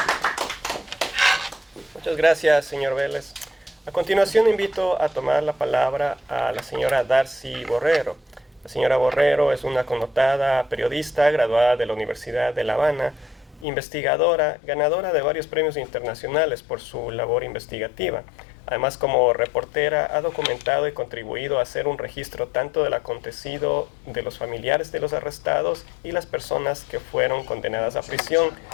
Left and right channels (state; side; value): drops out; right; at 13.7 s